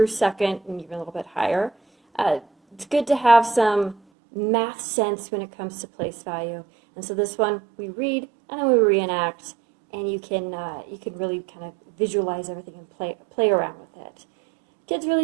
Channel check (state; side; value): drops out; left; at 4.0 s